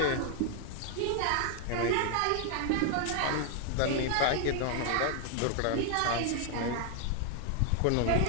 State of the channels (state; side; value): different; both; correlation 0.00